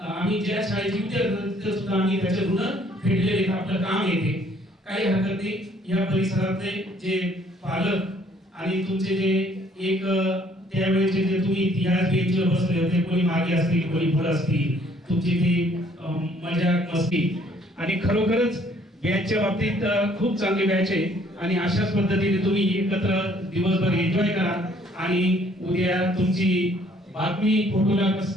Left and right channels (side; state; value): both; normal; correlation 0.62